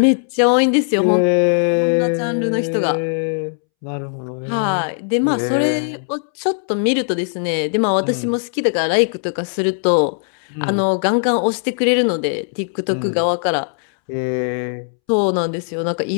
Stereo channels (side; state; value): right; silent; 67 dB below the other